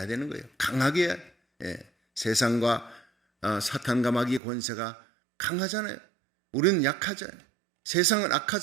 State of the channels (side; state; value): left; drops out; at 4.4 s